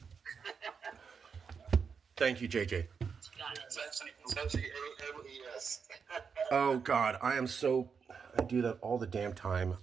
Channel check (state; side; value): quieter; left; 6.0 dB